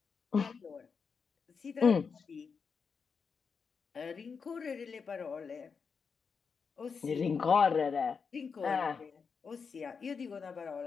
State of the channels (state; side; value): quieter; right; 5.7 dB